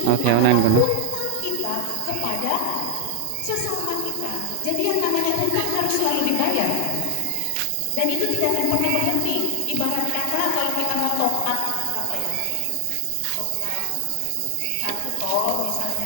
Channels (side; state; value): both; different; correlation 0.00